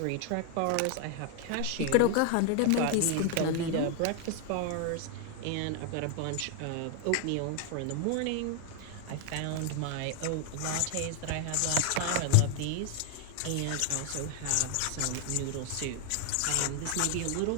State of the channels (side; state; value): both; different; correlation 0.00